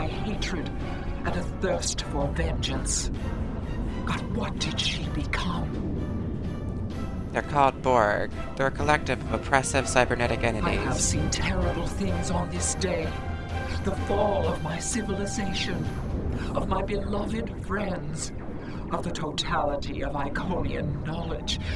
hatred and a thirst for vengeance. But what did she become? They're called Borg. They're a collective of oppressive cybernetic I have entities. seen terrible things on this day. The fall of my civilization, of my beloved friends, of the totality of Iconian knowledge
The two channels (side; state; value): both; identical; correlation 1.00